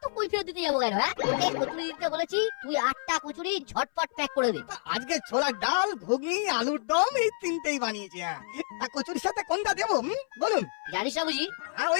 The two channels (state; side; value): silent; right; 59 dB below the other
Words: কৈফিয়ত দিতে যাবো কেন? হ্যাঁ, তোকে কচুরি দিতে বলেছি, তুই 8টা কচুরি ঝটপট প্যাক করে দে। আজকে ছোলার ডাল, ঘুগনি, আলুর দম এই তিনটেই বানিয়েছি। তা কচুরির সাথে কোনটা দেবো বলুন? জানিস না বুঝি?